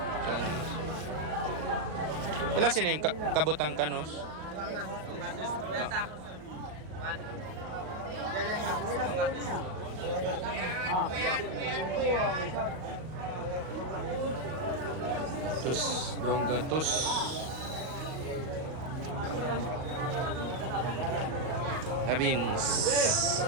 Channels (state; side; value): late; left; 38 ms